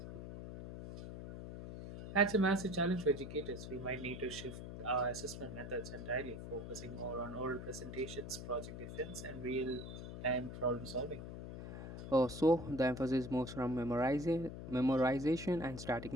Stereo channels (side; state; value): left; noise; hum, 9 dB below the sound